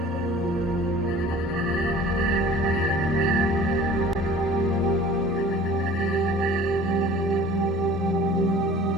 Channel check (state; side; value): normal; both; correlation 0.46